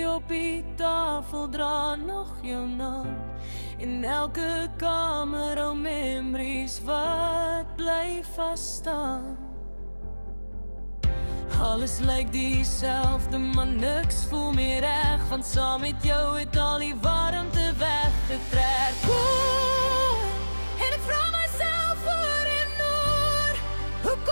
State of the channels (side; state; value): both; inverted; correlation -1.00